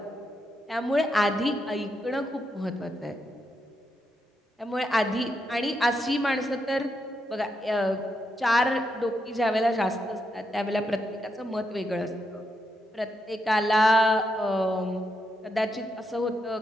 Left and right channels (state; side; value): normal; both; correlation 0.82